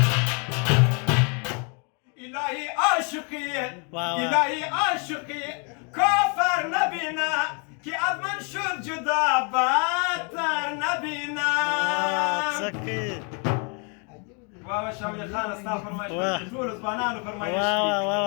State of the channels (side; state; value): right; quieter; 36.6 dB